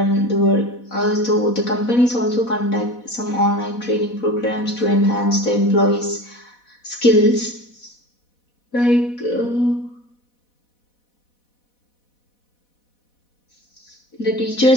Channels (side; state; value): right; late; 4.1 ms